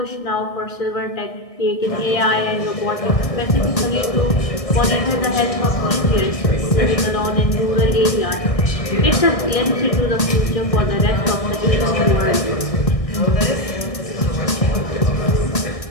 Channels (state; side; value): late; right; 1.6 ms